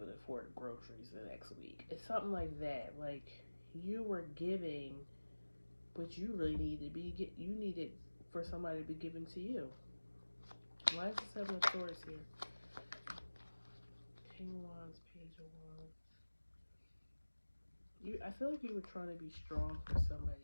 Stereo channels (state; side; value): inverted; both; correlation -1.00